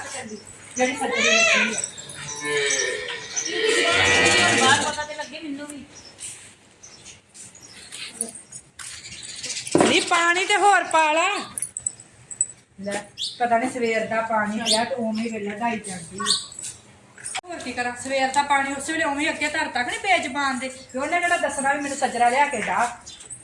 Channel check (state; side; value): identical; both; correlation 1.00